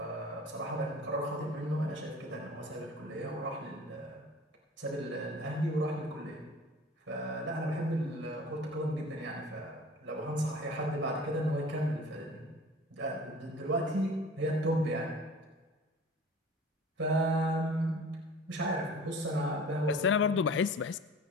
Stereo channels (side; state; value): both; normal; correlation 0.43